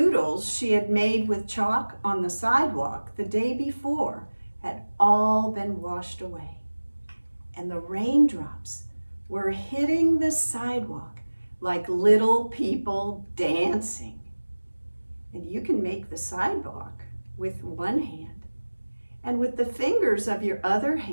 she had made with chalk on the sidewalk the day before had all been washed away. And the raindrops were hitting the sidewalk like little people dancing. And you can make the sidewalk with one hand. And with the fingers of your other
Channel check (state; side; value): inverted; both; correlation -1.00